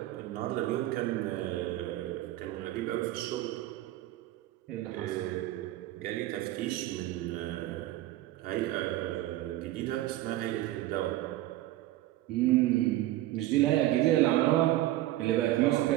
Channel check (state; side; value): quieter; left; 15.6 dB